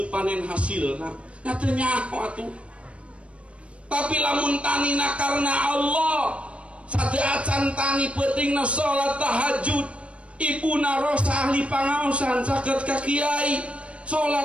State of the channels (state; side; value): late; left; 0.061 ms